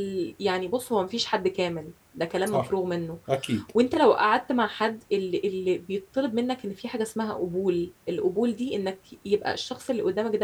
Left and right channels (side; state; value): both; identical; correlation 1.00